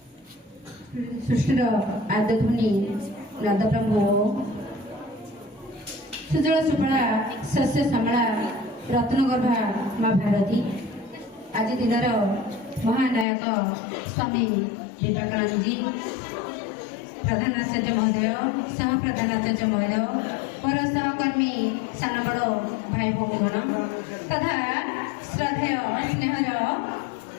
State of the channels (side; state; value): right; drops out; at 13.2 s